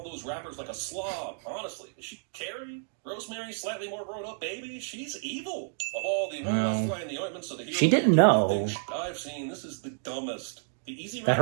those wrappers like a slob. Honestly, is she Carrie? Rosemary, slightly more grown-up baby? She's evil. Of all the Well, flying the ointments of the hero, she didn't know I've seen, this is the dumbest. The easy that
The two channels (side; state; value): left; silent; digital silence